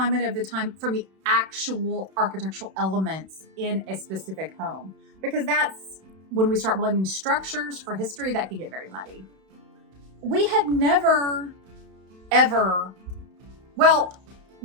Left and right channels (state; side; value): late; left; 32 ms